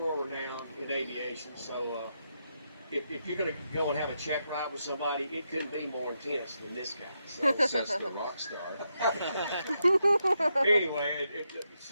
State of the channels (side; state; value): both; inverted; correlation -0.83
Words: renowned in aviation. So if you're going to go and have a check ride with somebody, it couldn't be more intense than this guy. So Says the rock star. anyway, it's